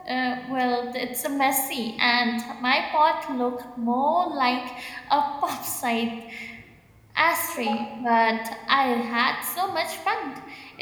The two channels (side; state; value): both; identical; correlation 1.00